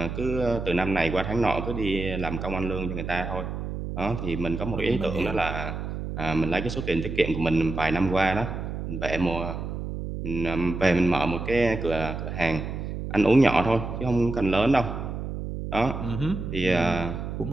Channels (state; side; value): noise; right; hum, 5 dB below the sound